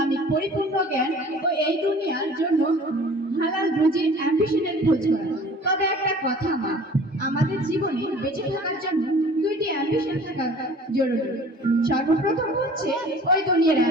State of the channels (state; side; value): normal; both; correlation 0.47